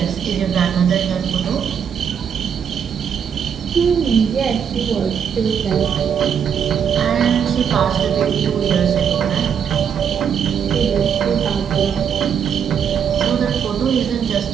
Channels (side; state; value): left; quieter; 7.6 dB